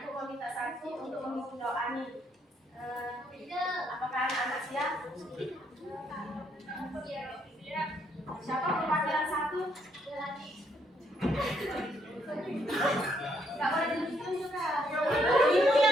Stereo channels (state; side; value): normal; both; correlation 0.72